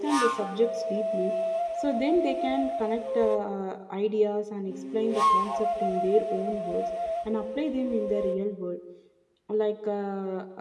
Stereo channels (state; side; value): identical; both; correlation 1.00